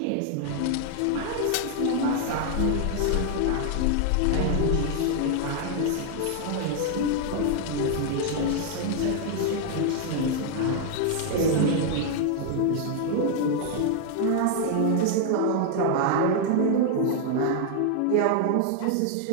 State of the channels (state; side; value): different; both; correlation 0.00